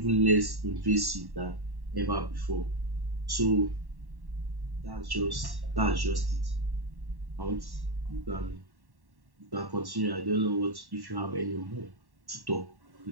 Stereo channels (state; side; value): late; left; 1.1 ms